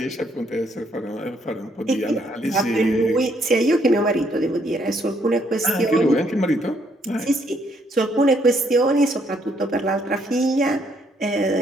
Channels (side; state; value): both; normal; correlation 0.70